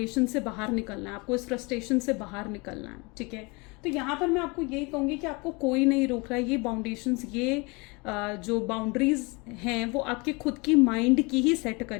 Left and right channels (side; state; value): right; quieter; 27.8 dB